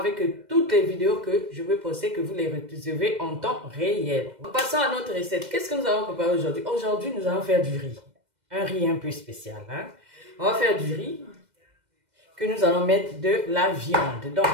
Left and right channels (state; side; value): late; left; 2.0 ms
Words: toutes les vidéos que je vais poster, que vous les recevez en temps réel. Passons à notre recette. Qu'est-ce que nous allons préparer aujourd'hui? Aujourd'hui, nous allons faire du riz. Un riz un peu spécial. Hein? On va faire du riz que nous allons mettre de la viande. Donc,